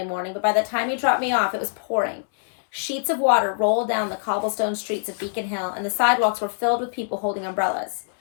morning, but by the time he dropped me off, it was pouring. Sheets of water rolled down the cobblestone streets of Beacon Hill, and the sidewalks were filled with people holding umbrellas.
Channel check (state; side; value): silent; right; 63 dB below the other